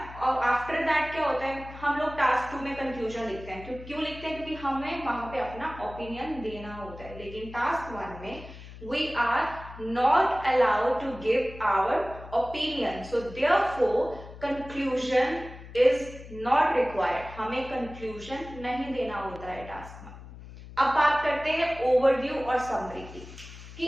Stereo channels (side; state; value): left; noise; hum, 15 dB below the sound